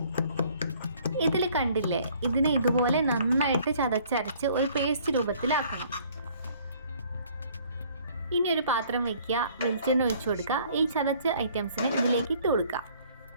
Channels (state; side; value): inverted; both; correlation -0.58